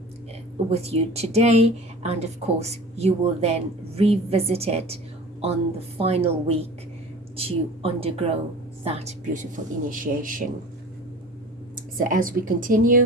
with you today, and of course you will then revisit it on the final week to undergo that beautiful initiation. So as we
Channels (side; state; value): both; normal; correlation 0.40